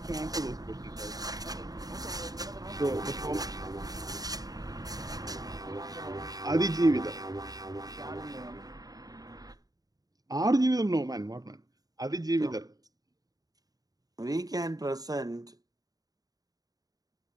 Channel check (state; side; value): late; left; 0.18 ms